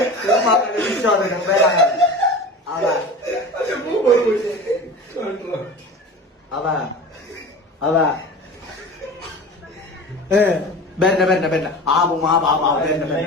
വിശ്വാസം വരാൻ. അതാ അതാ അതാ ബെന്ന ബെന്ന ബെന്ന ആവും ആ ബാബാ ബെന്ന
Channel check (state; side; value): normal; both; correlation 0.34